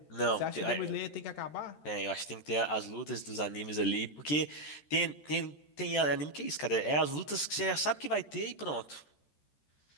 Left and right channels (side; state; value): right; late; 14 ms